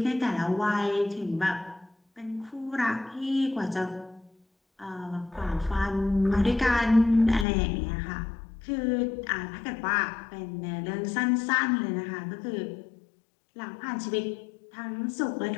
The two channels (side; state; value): right; drops out; at 7.5 s